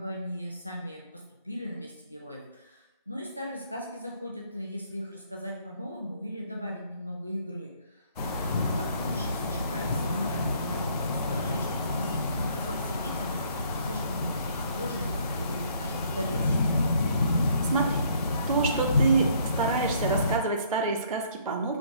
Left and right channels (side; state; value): both; inverted; correlation -0.62